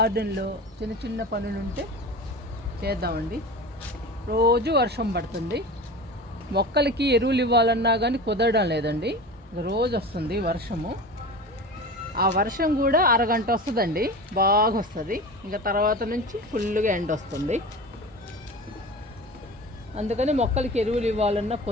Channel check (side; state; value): both; normal; correlation 0.32